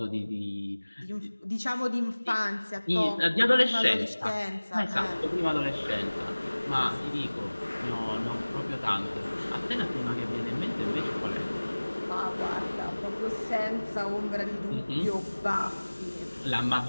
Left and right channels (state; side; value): inverted; both; correlation -1.00